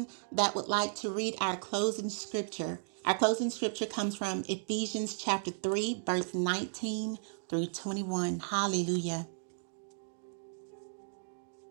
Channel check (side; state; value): left; silent; digital silence